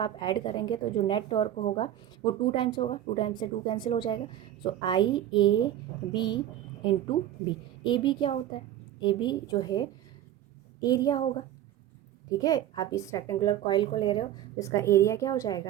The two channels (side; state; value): left; quieter; 12.0 dB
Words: ऐड करेंगे तो जो नेट टॉर्क होगा वो 2 टाइम्स होगा, 2 टाइम्स से 2 कैंसिल हो जाएगा। So I A B into B. A B क्या होता है, ए बी जो है एरिया होगा, ठीक है। आप इस रेक्टेंगुलर कॉइल को ले रहे हो तो इसका एरिया क्या हो